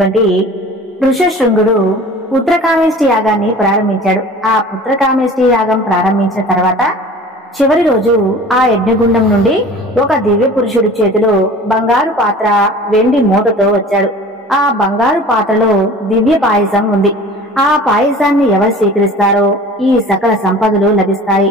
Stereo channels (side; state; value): both; normal; correlation 0.42